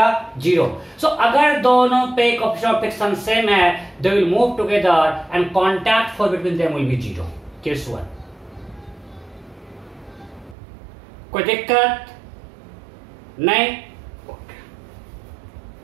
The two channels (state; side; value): drops out; left; at 10.6 s